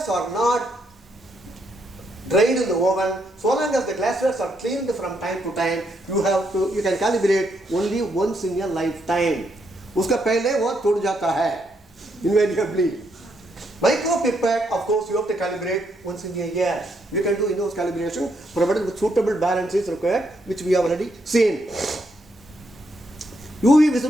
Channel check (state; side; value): normal; both; correlation 0.76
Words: are not dried in the oven, so long as the glasswares are cleaned from time to time, you can calibrate only once in your lifetime. उसका पहले वो टूट जाता है, invariably. Micro pipette, of course, you have to calibrate once in a year. You can do in-house calibration provided with suitable balance is required, which we have already seen. UV